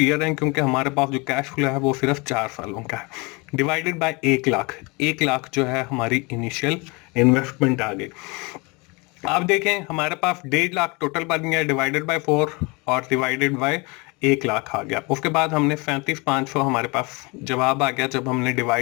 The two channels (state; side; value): quieter; right; 27.5 dB